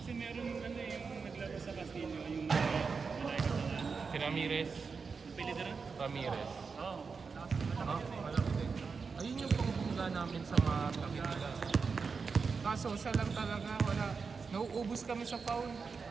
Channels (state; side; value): quieter; left; 5.1 dB